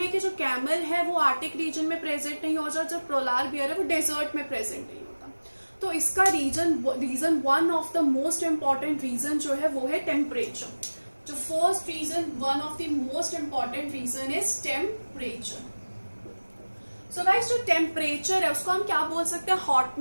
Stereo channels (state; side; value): inverted; both; correlation -1.00